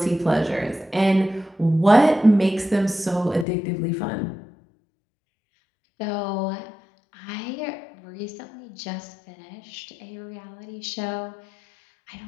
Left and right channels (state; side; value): drops out; right; at 3.5 s